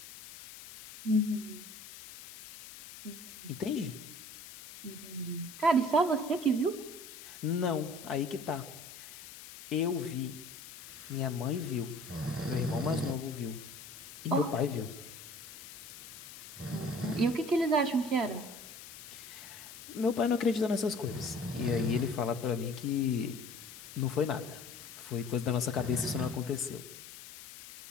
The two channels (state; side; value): noise; left; hiss, 15 dB below the sound